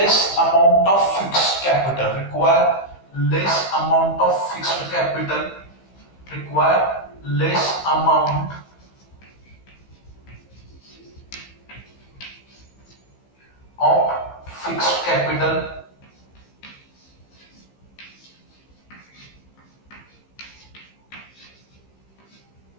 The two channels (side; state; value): right; late; 15 ms